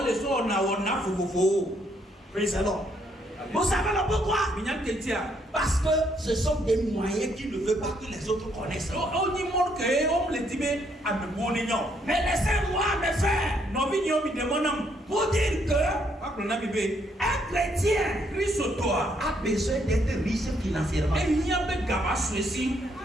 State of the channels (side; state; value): both; normal; correlation 0.71